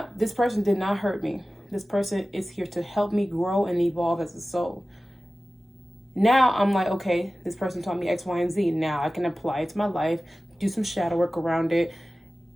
this person did not hurt me. This person is here to help me grow and evolve as a soul. Now I'm like, okay, this person taught me X, Y, and Z. Now I can apply it to my life, do some shadow work around it,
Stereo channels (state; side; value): normal; both; correlation 0.96